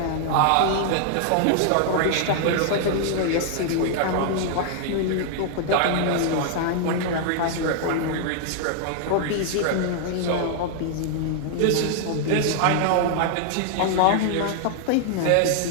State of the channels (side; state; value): both; different; correlation 0.00